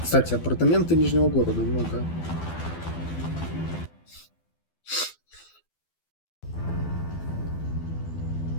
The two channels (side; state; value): right; late; 12 ms